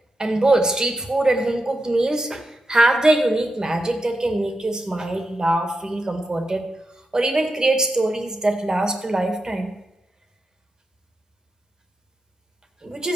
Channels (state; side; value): normal; both; correlation 0.88